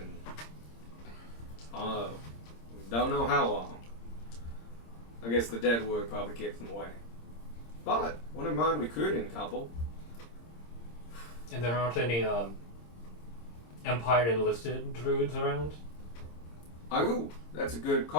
don't know how long. I guess the dead wood probably kept them away. But wouldn't mind recruiting a couple. And there aren't any Empire enlisted druids around? Oh, that's a good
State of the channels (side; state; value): right; late; 26 ms